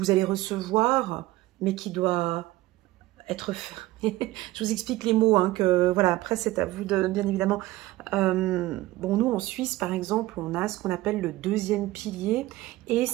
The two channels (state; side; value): quieter; left; 17.6 dB